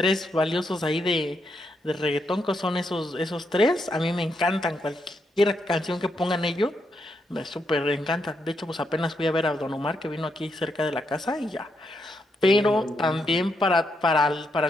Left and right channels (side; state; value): both; normal; correlation 0.80